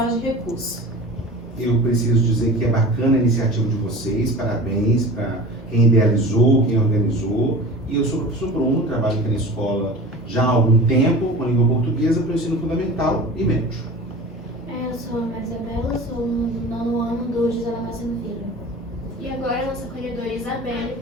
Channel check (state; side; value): normal; both; correlation 0.36